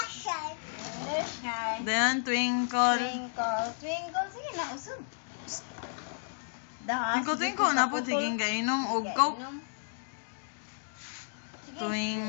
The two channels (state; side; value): silent; right; digital silence